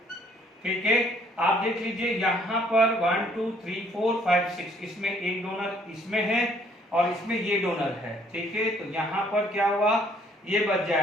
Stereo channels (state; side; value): normal; both; correlation 0.63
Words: ठीक है। आप देख लीजिए यहाँ पर 1 2 3 4 5 6, इसमें एक डोनर इसमें है और इसमें ये डोनर है, ठीक है। तो यहाँ पर क्या हुआ, ये बच